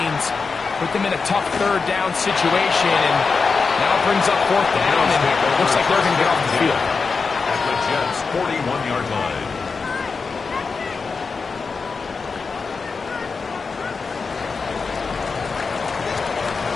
put them in a tough 3rd down situation, and now it brings up 4th down, and it looks like they're going to get off the field. At the Jets' 41-yard line.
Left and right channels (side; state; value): right; quieter; 4.8 dB